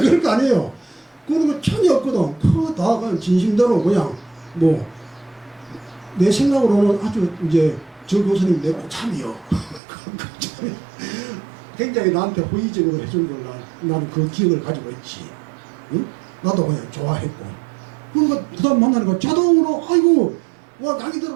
거 아니에요. 그런 거 전혀 없거든. 그거 다 그냥 진심대로 그냥 내 생각으로는 아주 이제 저 교수님 내 고참이요. 굉장히 나한테 호의적으로 해준 걸 나는 그 기억을 가지고 있지. 응? 나도 그냥 좋아했고. 그러니까 부담 만나니까 자동으로 아이고 와 강의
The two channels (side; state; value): left; drops out; at 9.8 s